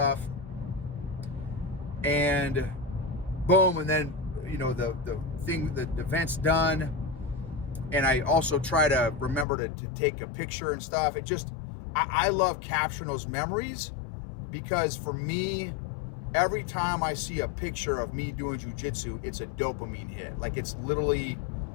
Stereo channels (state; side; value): drops out; right; at 9.5 s